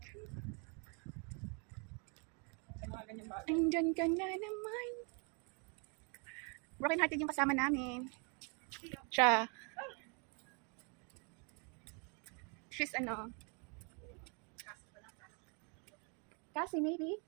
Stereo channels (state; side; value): quieter; left; 35.8 dB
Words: Sa mga ganyan bagay. Andyan ka na naman. Broken hearted yung kasama namin. Siya. She's ano? Kasi maybe.